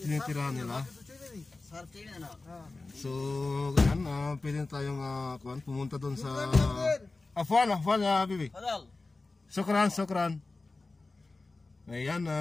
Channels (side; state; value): right; quieter; 3.4 dB